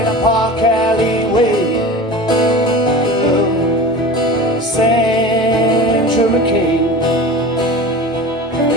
a park alleyway. Sandra McKay.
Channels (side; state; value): both; normal; correlation 0.34